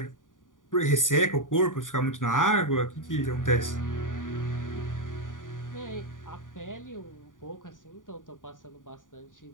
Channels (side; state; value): right; late; 0.88 ms